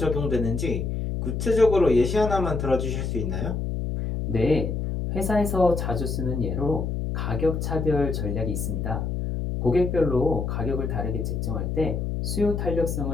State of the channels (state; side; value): noise; left; hum, 2 dB below the sound